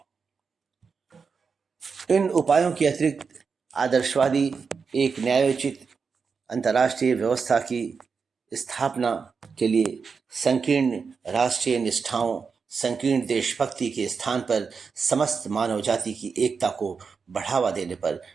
इन उपायों के अतिरिक्त आदर्शवादी एक न्यायोचित अंतर्राष्ट्रीय व्यवस्था की स्थापना के लिए संकीर्ण राष्ट्रीय निष्ठाओं, संकीर्ण देशभक्ति के स्थान पर समस्त मानव जाति की एकता को बढ़ावा देने पर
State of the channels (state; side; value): quieter; left; 5.4 dB